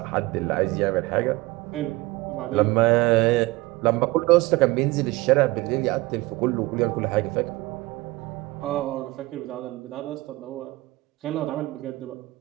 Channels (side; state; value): left; quieter; 21.0 dB